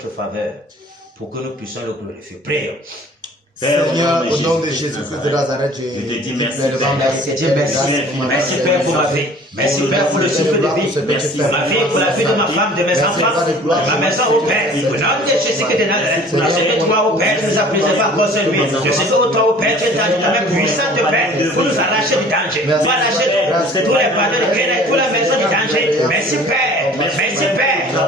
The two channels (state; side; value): normal; both; correlation 0.49